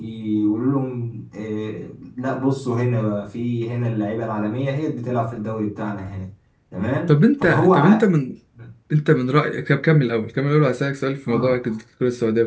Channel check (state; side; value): identical; both; correlation 1.00